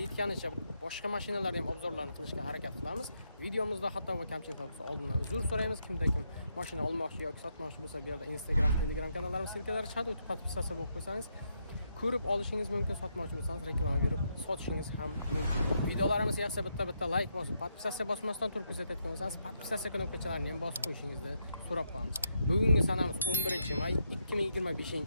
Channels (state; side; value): inverted; both; correlation -0.79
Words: yetganicha boshqa mashinalarni ham obzorlarni qilishga harakat qilamiz. Videomizda xato va kamchiliklar bo'lsa oldindan uzr so'raymiz. Kimda kim mashina olmoqchi yoki sotmoqchi bo'lsa, bu yerda Instagram, Telegram kanallarimiz silkalari chiqadi. O'tib podpisatsiya bo'lib qo'ysangiz, ko'rib olishingiz mumkin. Sotmoqchi bo'lsangiz reklama berib sotishingiz ham mumkin. Videolarimiz yaxshi bitta like bosib, podpisatsiya bosmasdan turib kuzatayotgan bo'lsangiz, podpisatsiya knopkachalarini ham bosib qo'yishingizni so'rab qolamiz. Bugungi sanamiz 11-may